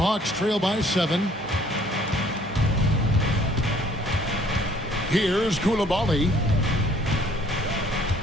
trail by 7. Here's Koulibaly.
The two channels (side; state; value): both; normal; correlation 0.58